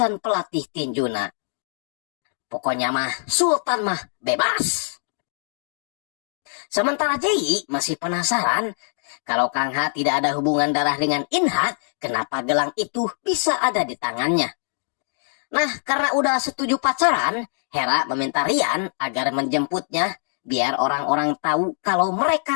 pelatih tinjuna. Pokoknya mah, Sultan mah bebas. Sementara Jae-yi masih penasaran kalau Kang Ha tidak ada hubungan darah dengan Inha, kenapa gelang itu bisa ada di tangannya. Nah, karena udah setuju pacaran, Hera meminta Rian agar menjemputnya biar orang-orang tahu kalau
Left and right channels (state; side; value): silent; right; digital silence